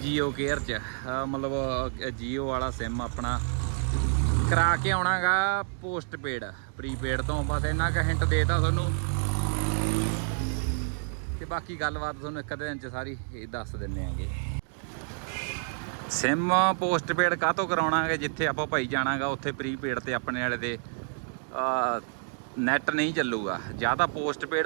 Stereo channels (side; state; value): left; silent; 59 dB below the other